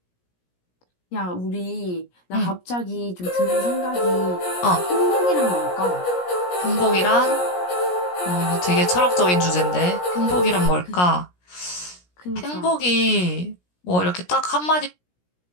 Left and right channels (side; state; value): right; late; 17 ms